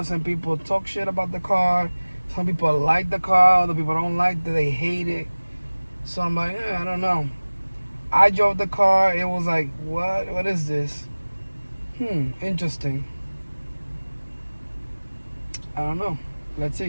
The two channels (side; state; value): both; inverted; correlation -1.00